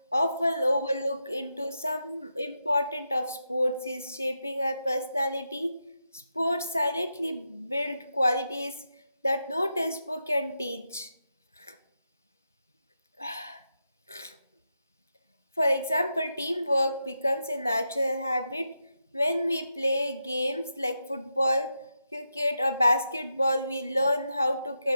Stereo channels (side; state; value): both; inverted; correlation -0.86